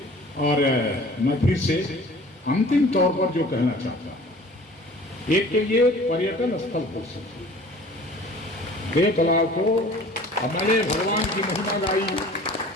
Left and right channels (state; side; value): normal; both; correlation 0.47